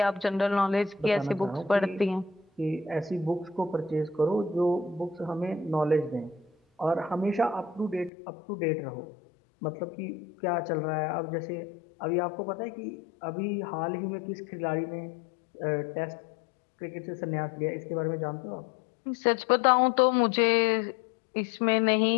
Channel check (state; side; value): drops out; right; at 8.1 s